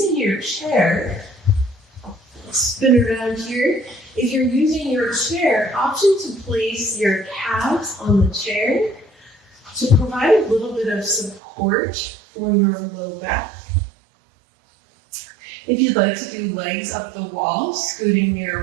your chair, spin around here. If you're using your chair, option to place your calves on the chair to provide a little bit of support for your low back. If you'd like to do legs up the wall, scooting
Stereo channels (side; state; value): left; drops out; at 11.4 s